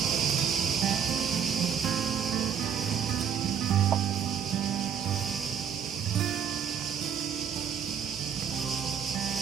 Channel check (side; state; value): left; quieter; 8.0 dB